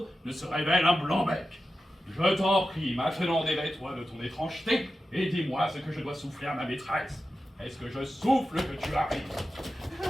ne se révèle un blanc-bec. Je t'en prie, maintenant dévais-toi de ton étrangeté, et dis-moi ce que je dois souffler à ma maîtresse. Est-ce que je souffle que tu arrives?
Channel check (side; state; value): both; normal; correlation 0.92